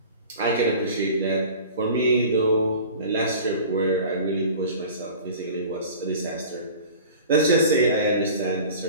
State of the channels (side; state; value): both; inverted; correlation -0.41